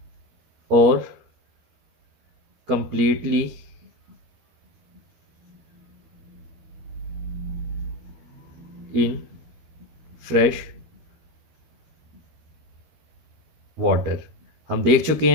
और कंप्लीटली इन फ्रेश वाटर। हम देख चुके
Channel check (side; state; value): left; late; 13 ms